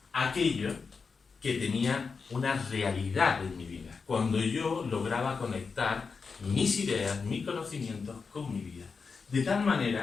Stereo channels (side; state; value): right; quieter; 5.1 dB